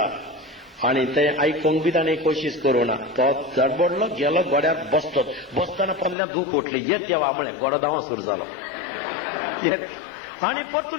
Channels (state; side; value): drops out; right; at 6.2 s